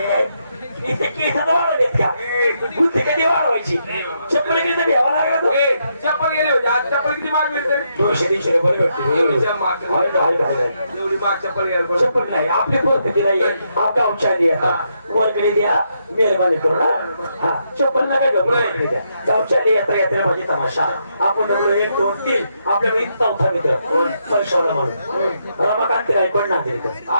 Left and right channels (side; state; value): both; inverted; correlation -0.79